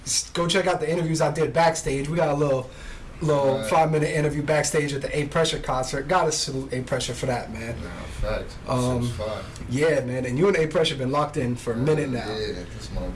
go check out the interviews I did backstage. We got a little 5-minute interview backstage at the A Pressure concert. Gotta salute A Pressure for that, man. Nah, facts. Yeah, man. And you and A Pressure been locked in for a minute now. Yeah, that's my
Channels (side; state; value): both; identical; correlation 1.00